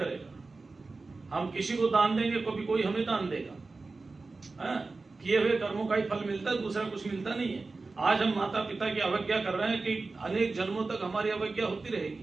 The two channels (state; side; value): quieter; left; 3.7 dB